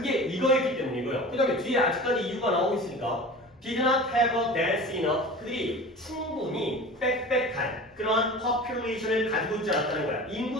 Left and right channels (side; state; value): both; normal; correlation 0.36